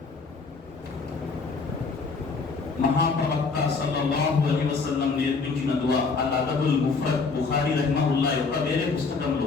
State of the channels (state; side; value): quieter; right; 4.5 dB